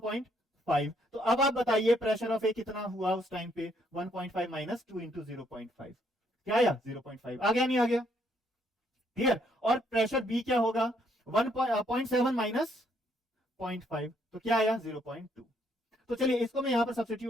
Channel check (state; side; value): normal; both; correlation 0.70